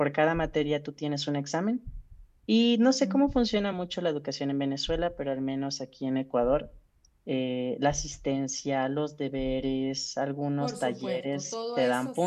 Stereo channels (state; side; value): identical; both; correlation 1.00